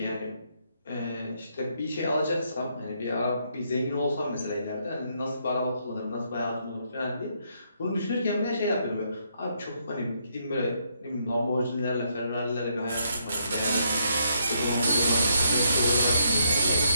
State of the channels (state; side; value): inverted; both; correlation -0.75